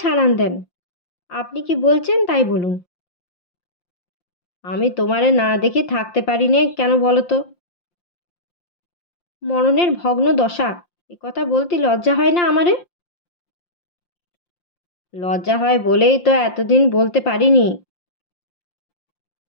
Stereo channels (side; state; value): right; late; 5.7 ms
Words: ছাড়ান দেন। আপনি কি বলছেন তাই বলুন। আমি তোমারে না দেখে থাকতে পারি নে কেন বলো তো? মরণের ভগ্ন দশা, এ কথা বলতে লজ্জা হয় না আমারে? লজ্জা হয় বলেই তো এতদিন বলতে পারিনি।